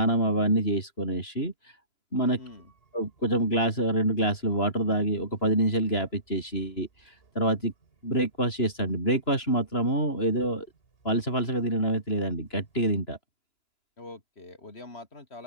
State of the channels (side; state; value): right; late; 2.9 ms